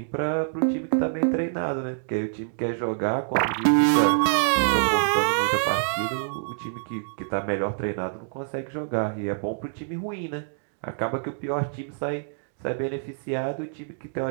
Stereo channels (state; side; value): silent; left; digital silence